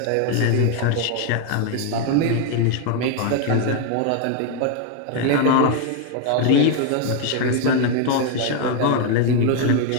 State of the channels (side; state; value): both; different; correlation 0.01